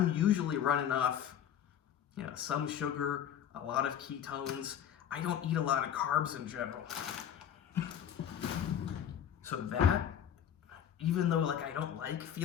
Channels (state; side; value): quieter; right; 9.5 dB